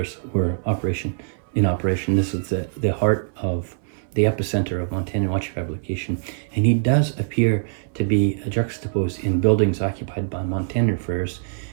were in operation. This is the heart of the epicenter of Montandon watch fabrication, and he does appear to be juxtaposed in buildings occupied by Montandon furs.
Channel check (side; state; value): left; silent; 60 dB below the other